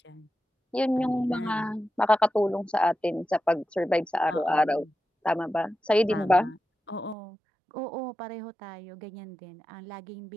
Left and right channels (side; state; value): left; drops out; at 7.2 s